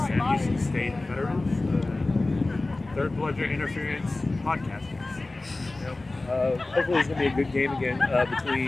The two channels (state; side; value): quieter; right; 3.1 dB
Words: State veterans, third pleasure interference podcasters. Hopefully it's going to be a good game again